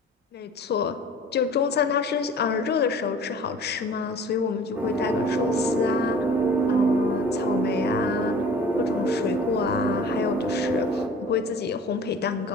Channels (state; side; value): normal; both; correlation 0.45